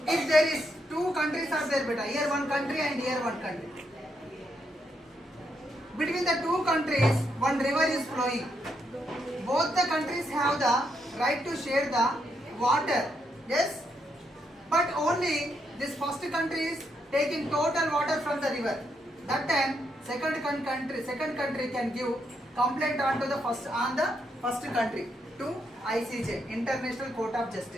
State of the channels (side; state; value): both; normal; correlation 0.78